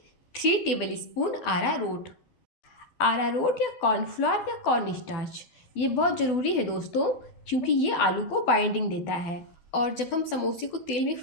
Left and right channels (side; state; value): right; late; 12 ms